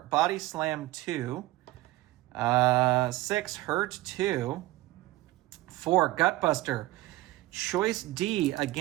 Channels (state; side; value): quieter; left; 17.8 dB